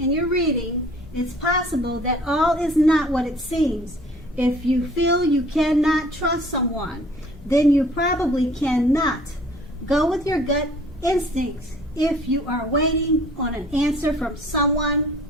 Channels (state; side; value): noise; left; rumble, 20 dB below the sound